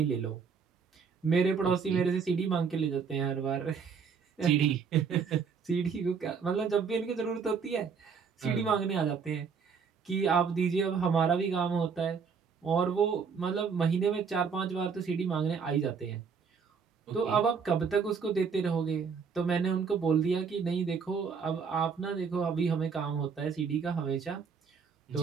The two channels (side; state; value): left; quieter; 6.0 dB